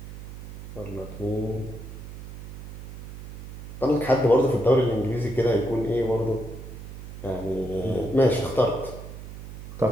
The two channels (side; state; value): right; noise; hum, 11 dB below the sound